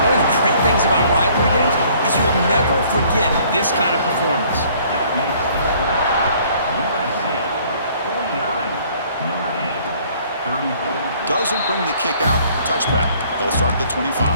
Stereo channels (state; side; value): inverted; both; correlation -0.58